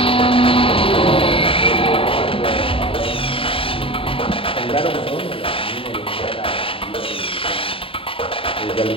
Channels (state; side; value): late; right; 0.26 ms